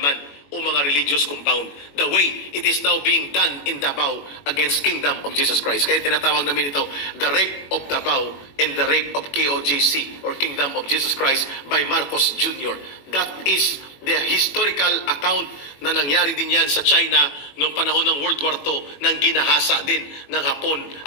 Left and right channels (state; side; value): late; right; 21 ms